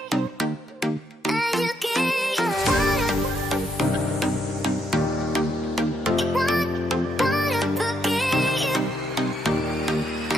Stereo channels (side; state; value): both; normal; correlation 0.76